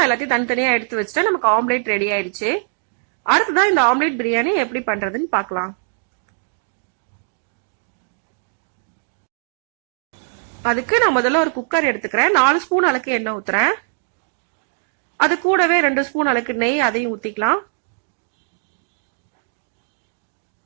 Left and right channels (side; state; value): left; silent; digital silence